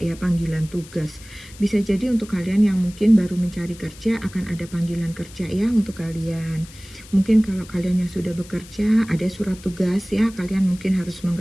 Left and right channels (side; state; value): left; noise; hiss, 20 dB below the sound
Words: ya, panggilan tugas. Bisa jadi untuk kalian yang mungkin baru mencari kerja akan ada panggilan kerja ya untuk kalian. Mungkin kalau kalian yang sudah bekerja ada surat tugas ya, kalian mungkin harus